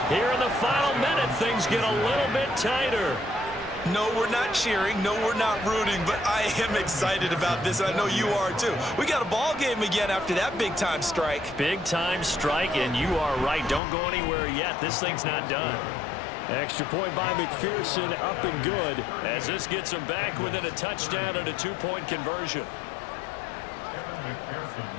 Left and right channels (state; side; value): drops out; right; at 13.8 s